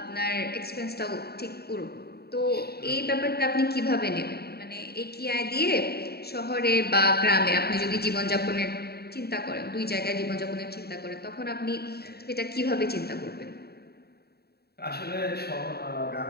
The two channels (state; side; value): late; right; 0.46 ms